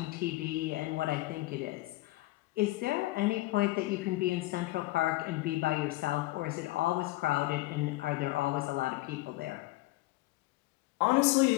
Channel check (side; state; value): right; quieter; 19.2 dB